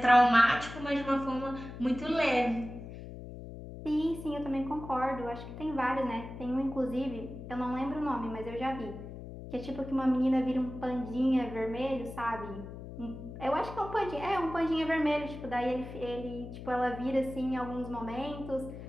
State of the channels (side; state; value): left; noise; hum, 11 dB below the sound